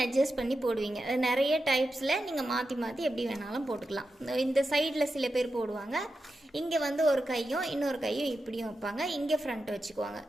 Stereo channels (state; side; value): normal; both; correlation 0.90